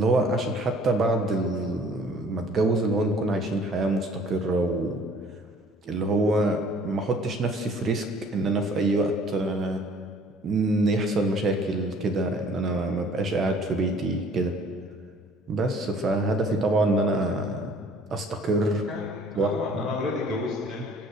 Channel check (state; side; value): normal; both; correlation 0.54